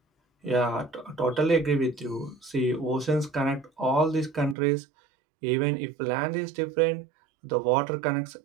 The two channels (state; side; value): drops out; left; at 4.5 s